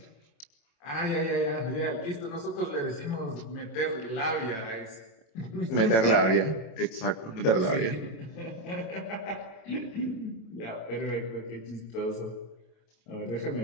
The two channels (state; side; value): late; right; 27 ms